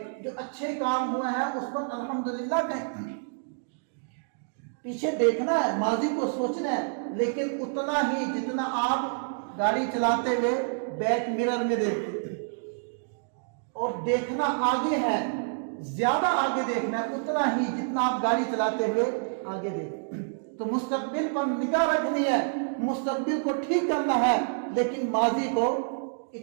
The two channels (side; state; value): left; silent; digital silence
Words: جو اچھے کام ہوئے ہیں اس پر الحمدللہ کہیں. پیچھے دیکھنا ہے، ماضی کو سوچنا ہے، لیکن اتنا ہی جتنا آپ گاڑی چلاتے ہوئے بیک مرر میں دیکھتے، اور دیکھنا آگے ہے زیادہ آگے دیکھنا ہے، اتنا ہی جتنا آپ گاڑی چلاتے ہوئے آگے دیکھیں۔ تو مستقبل پر نگاہ رکھنی ہے، مستقبل کو ٹھیک کرنا ہے، لیکن ماضی کو